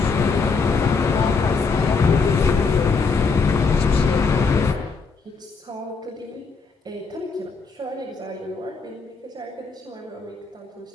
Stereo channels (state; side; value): quieter; right; 4.7 dB